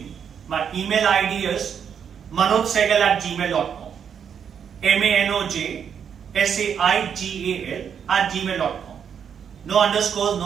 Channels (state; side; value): quieter; left; 7.7 dB